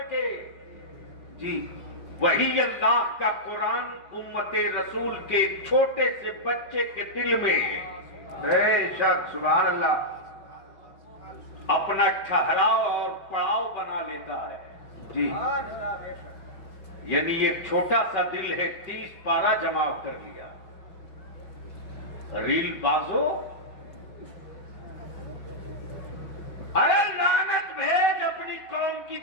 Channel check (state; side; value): late; right; 5.2 ms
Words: जी वही अल्लाह का कुरान उम्मते रसूल के एक छोटे से बच्चे के दिल में बेशक सुभान अल्लाह। अपना ठहराव और पड़ाव बना लेता है। जी यानी एक छोटा सा दिल है, 30 पारा जमा कर लिया। रील बाजो, अरे लानत भेज अपनी कौम की